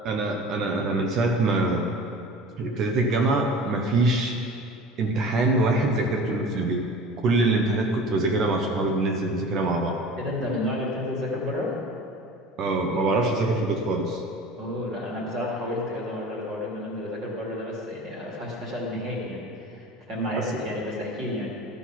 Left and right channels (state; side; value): normal; both; correlation 0.39